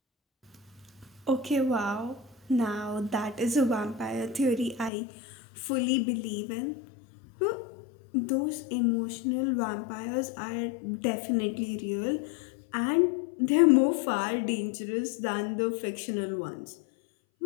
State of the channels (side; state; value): right; drops out; at 4.9 s